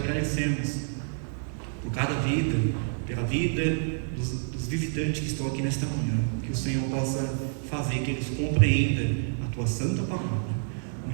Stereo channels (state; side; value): silent; left; digital silence